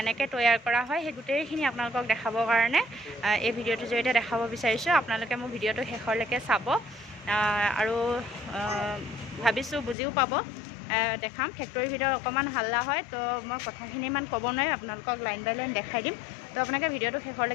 তৈয়াৰ কৰা হয় সেই গোটেইখিনি আপোনালোকক দেখাবৰ কাৰণে এই ভিডিঅ'টোৰ জৰিয়তে দেখাব বিচাৰিছোঁ। আপোনালোকে মোৰ ভিডিঅ'টো শেষলৈকে চাব আৰু ভাবিছোঁ বুজিও পাব। দেখাম ফেক্টৰীৰ ভিতৰত অকণমান হাল্লা হয়, তো মই কথাখিনি ইমান ক'ব নোৱাৰিম, আপোনালোকক লাইন বাই লাইন দেখাই দিম। তো আপোনালোকে ভিডিঅ'টো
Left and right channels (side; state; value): right; drops out; at 10.0 s